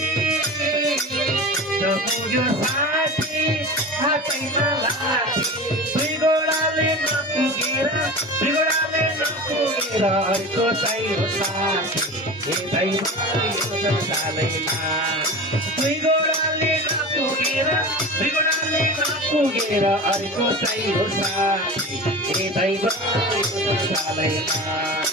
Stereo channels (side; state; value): both; normal; correlation 0.32